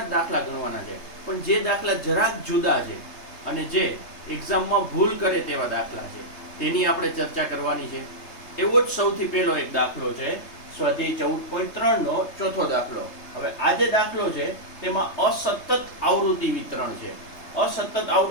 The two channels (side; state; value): right; late; 3.3 ms